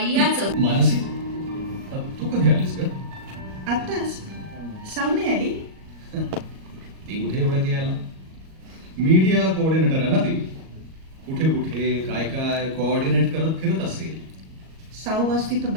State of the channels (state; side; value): late; left; 37 ms